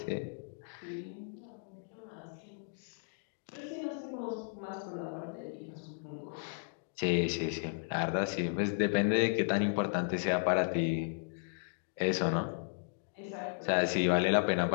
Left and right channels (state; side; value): silent; right; digital silence